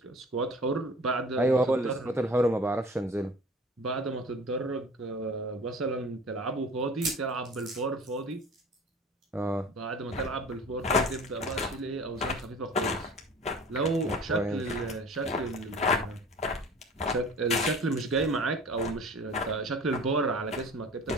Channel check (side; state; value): both; normal; correlation 0.42